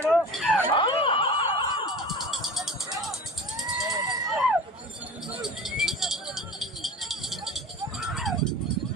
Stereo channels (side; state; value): both; normal; correlation 0.36